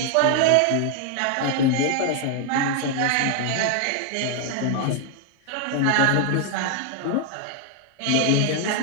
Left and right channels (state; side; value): different; both; correlation 0.00